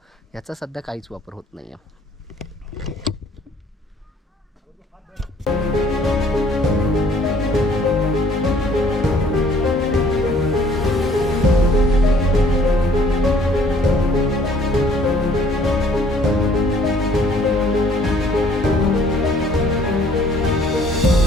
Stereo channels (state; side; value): normal; both; correlation 0.59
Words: याचा सध्या काहीच वापर होत नाही आहे.